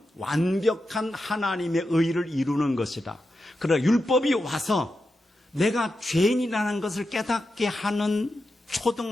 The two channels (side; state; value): both; normal; correlation 0.89